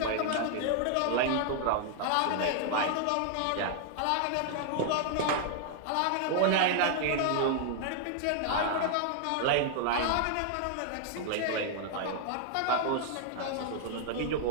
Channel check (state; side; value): different; both; correlation 0.00